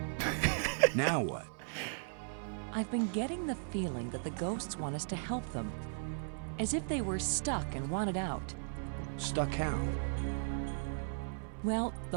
Now what? I've been getting the feeling that the ghosts want us to help them. As if they were stuck and wanted out. Stuck how? Well,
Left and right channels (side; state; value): left; silent; 53 dB below the other